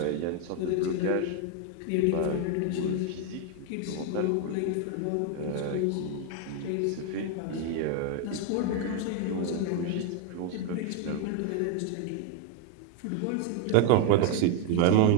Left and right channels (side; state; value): both; different; correlation 0.01